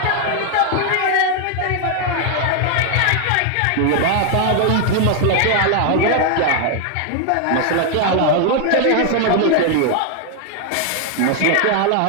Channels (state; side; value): different; both; correlation 0.00